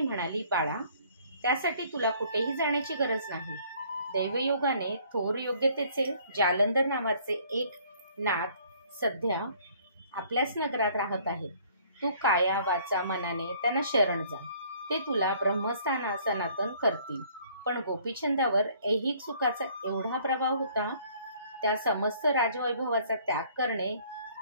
म्हणाली, बाळा, त्यासाठी तुला कुठेही जाण्याची गरज नाही। दैवयोगाने थोर योग्यतेचे जालंधर नावाचे एक नाथ सध्या आपल्याच नगरात राहत आहेत। तू काया वाचा मनाने त्यांना शरण जा, ते तुला ब्रह्मस्थान सनातन करतील। पण गोपीचंदावर ऐहिक सुखाचा एवढा प्रभाव होता, त्या समस्त राजवैभवाचा त्याग करणे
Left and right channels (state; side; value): inverted; both; correlation -0.59